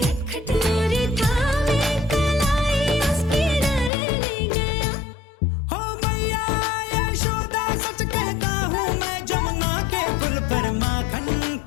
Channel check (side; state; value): right; drops out; at 3.9 s